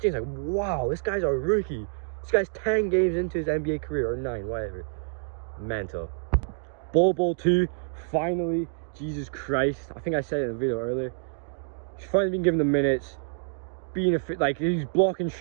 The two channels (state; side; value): silent; left; digital silence